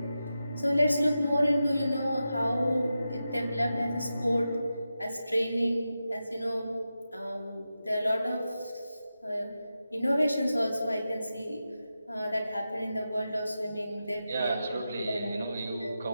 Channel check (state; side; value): inverted; both; correlation -0.91